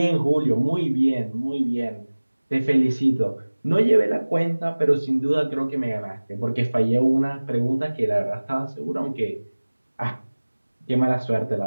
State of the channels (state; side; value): inverted; both; correlation -1.00